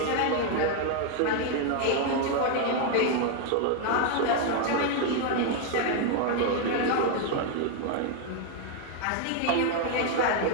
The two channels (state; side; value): different; both; correlation 0.00